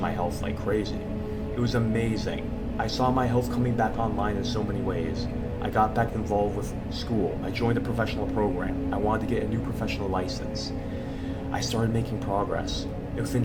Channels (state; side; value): identical; both; correlation 1.00